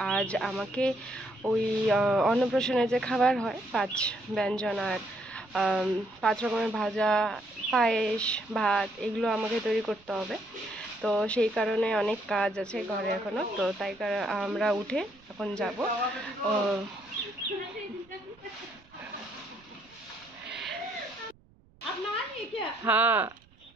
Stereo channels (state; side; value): noise; right; rumble, 29 dB below the sound